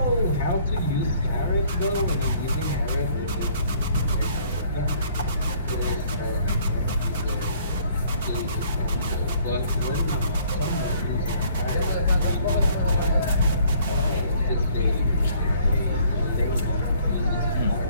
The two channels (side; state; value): both; inverted; correlation -0.59